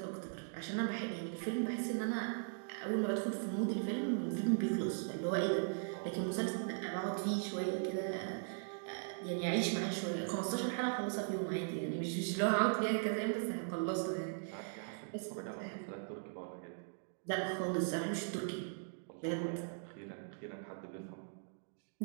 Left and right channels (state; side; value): silent; left; digital silence